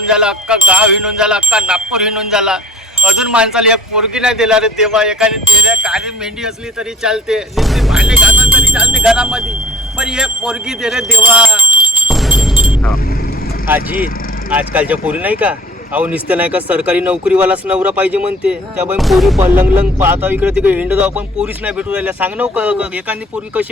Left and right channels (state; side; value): normal; both; correlation 0.48